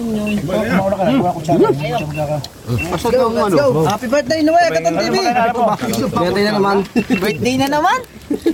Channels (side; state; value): both; identical; correlation 1.00